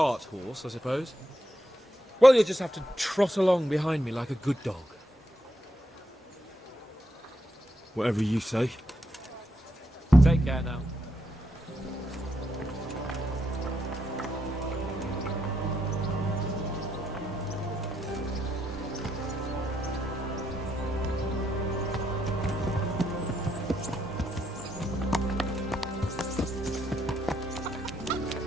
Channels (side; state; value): both; normal; correlation 0.79